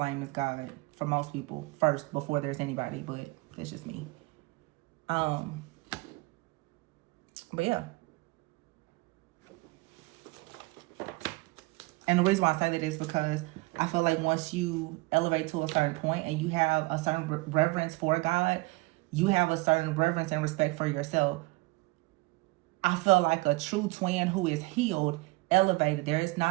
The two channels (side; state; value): left; quieter; 23.8 dB